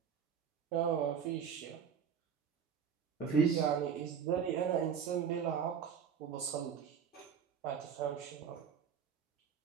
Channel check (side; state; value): left; quieter; 7.4 dB